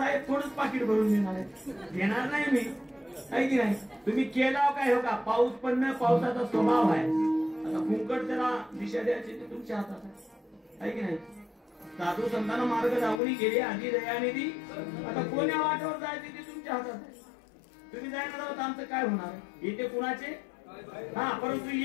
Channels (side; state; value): right; drops out; at 13.2 s